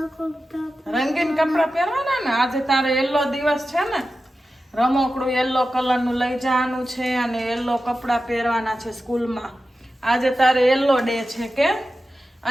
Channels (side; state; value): both; normal; correlation 0.93